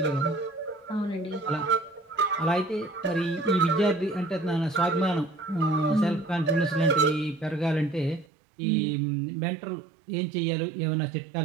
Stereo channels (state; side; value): drops out; left; at 8.2 s